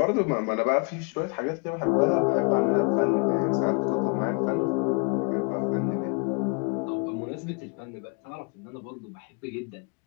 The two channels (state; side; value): quieter; right; 34.1 dB